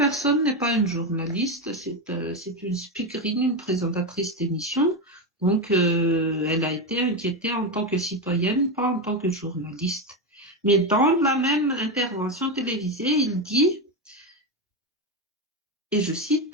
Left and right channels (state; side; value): normal; both; correlation 0.12